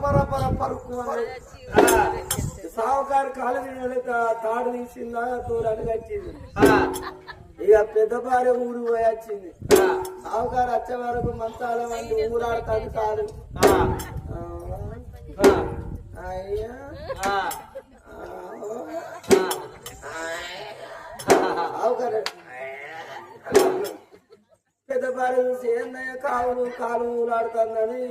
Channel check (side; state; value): both; identical; correlation 1.00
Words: పర పర పరుకు సావుకారు కాలు తాడు తీసిందా దూరానికి వచ్చింది. ఇక పెద్ద భార్య ఊరు పోయి వచ్చింది. సావుకారు వచ్చే వరకు మంచాల మంది ఊరాడుతాడు కాదు. అయ్యా సావుకారు పెద్ద భార్య చూసి ఏందయ్యా కాలు ఊరాడుతుందని